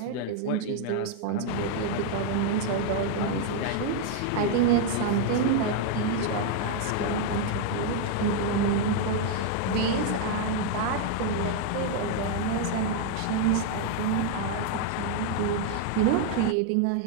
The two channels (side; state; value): both; different; correlation 0.00